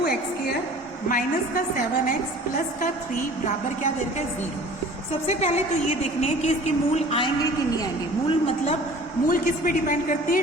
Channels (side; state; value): both; normal; correlation 0.46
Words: माइनस का 7x प्लस का 3 बराबर क्या दे रखा है? 0। सबसे पहले तो ये देखने हैं कि इसके मूल आएंगे कि नहीं आएंगे। मूल मतलब मूल किस पे डिपेंड करते हैं?